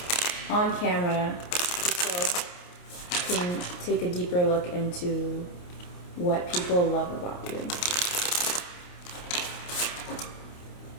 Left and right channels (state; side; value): late; right; 28 ms